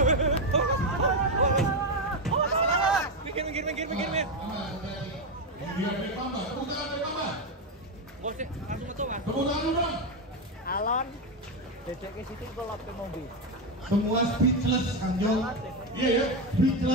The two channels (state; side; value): normal; both; correlation 0.09